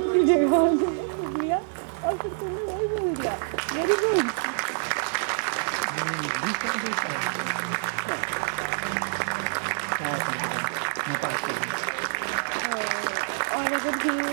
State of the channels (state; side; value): silent; left; digital silence